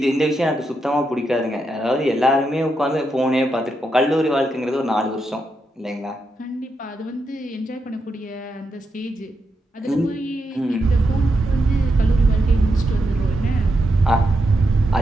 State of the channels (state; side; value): normal; both; correlation 0.84